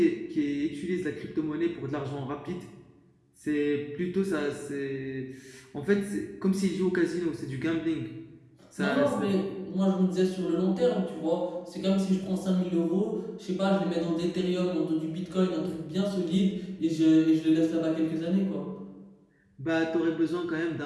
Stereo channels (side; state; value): both; identical; correlation 1.00